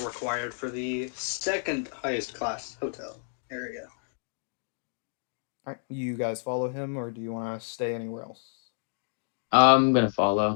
required for the second highest class hotel area. All right, you guys follow him, or do you want to stay anywhere else? I'm gonna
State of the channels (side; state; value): right; silent; digital silence